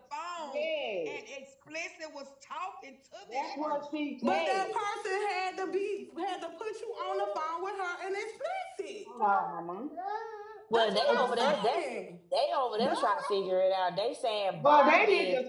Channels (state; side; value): identical; both; correlation 1.00